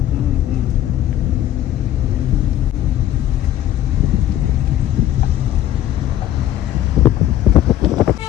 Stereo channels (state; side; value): quieter; right; 12.4 dB